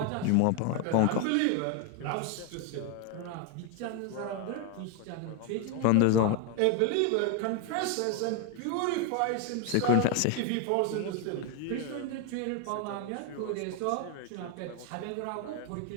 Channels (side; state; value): both; different; correlation 0.01